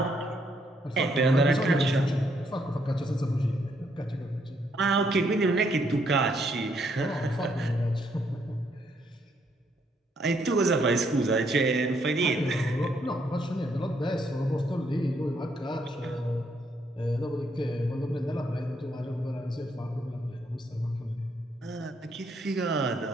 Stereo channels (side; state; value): both; normal; correlation 0.73